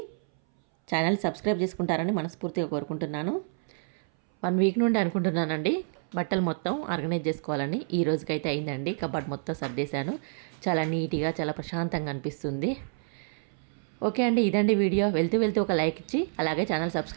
ఛానల్ సబ్స్క్రైబ్ చేసుకుంటారని మనస్ఫూర్తిగా కోరుకుంటున్నాను. 1 వీక్ నుండి అనుకుంటున్నానండి బట్టలు మొత్తం ఆర్గనైజ్ చేసుకోవాలని. ఈ రోజుకైతే అయిందండి. కబోర్డ్ మొత్తం సర్దేశాను. చాలా నీట్గా చాలా ప్రశాంతంగా అనిపిస్తుంది. ఓకే అండి, ఇదండి వీడియో. వెళ్తూ ఒక లైక్ ఇచ్చి అలాగే ఛానల్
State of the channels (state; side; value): silent; left; 59 dB below the other